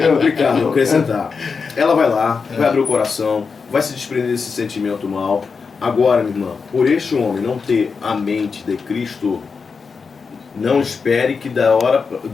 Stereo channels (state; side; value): quieter; right; 5.2 dB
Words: complicado acrescentar. Ela vai lá, vai abrir o coração, vai se desprender desse sentimento mal. Agora, minha irmã, por este homem não ter a mente de Cristo, não espere que